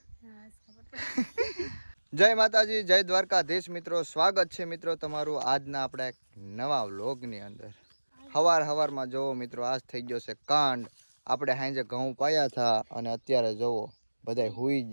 જય માતાજી જય દ્વારકાધીશ મિત્રો સ્વાગત છે મિત્રો તમારું આજના આપણા એક નવા વ્લોગની અંદર હવારમાં જોવો મિત્રો આજ થઈ ગયો છે કાંડ આપણે હાંજે ઘઉં પાયા હતા અને અત્યારે જોવો બધા હુઈ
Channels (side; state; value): both; inverted; correlation -1.00